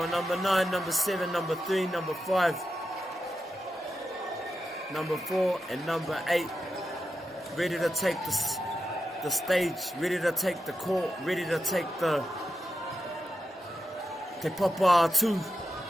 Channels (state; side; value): normal; both; correlation 0.88